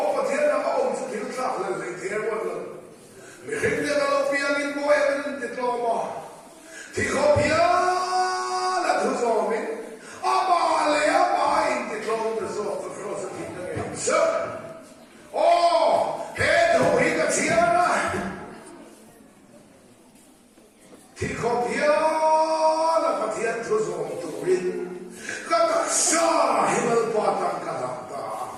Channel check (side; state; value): both; identical; correlation 1.00